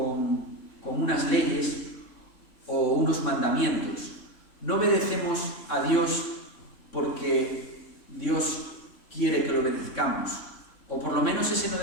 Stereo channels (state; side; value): late; right; 3.6 ms